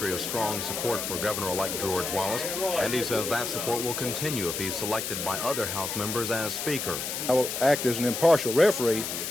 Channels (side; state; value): left; noise; hiss, 4 dB below the sound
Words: of strong support for Governor-elect George Wallace, and he says that support will continue if he's selected by other House members as Speaker. I will act as an impartial referee